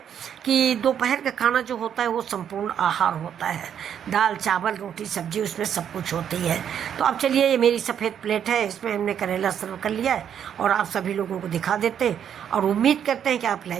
कि दोपहर का खाना जो होता है वो संपूर्ण आहार होता है। दाल चावल रोटी सब्जी उसमें सब कुछ होती है। तो अब चलिए, ये मेरी सफ़ेद प्लेट है, इसमें हमने करेला सर्व कर लिया है और आप सभी लोगों को दिखा देते हैं। और उम्मीद करते हैं कि आप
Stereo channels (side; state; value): left; quieter; 8.9 dB